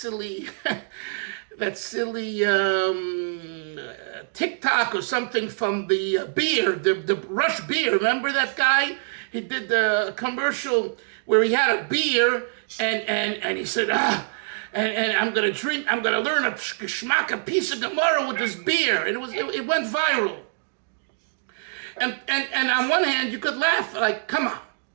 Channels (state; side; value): silent; left; digital silence